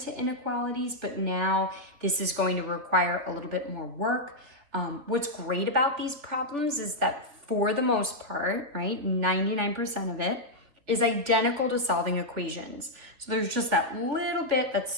inequalities, but now this is going to require a little bit more work. What's great about these problems is that for the most part, right, 99% of it is identical to solving equations. So there's just that little bit that's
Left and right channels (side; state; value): left; late; 3.8 ms